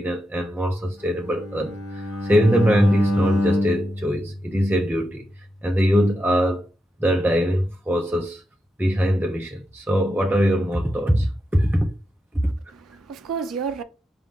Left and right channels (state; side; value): normal; both; correlation 0.87